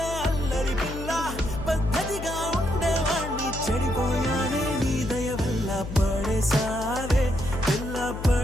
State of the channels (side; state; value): left; noise; hum, 8 dB below the sound